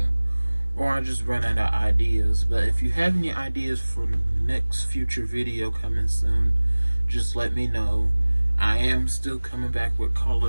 or I just run out of ideas. But if you have any ideas for the next future video coming soon, just let me know. I am still coming back with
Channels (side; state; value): both; inverted; correlation -1.00